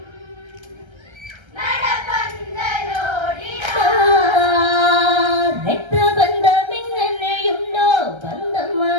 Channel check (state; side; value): late; left; 1.3 ms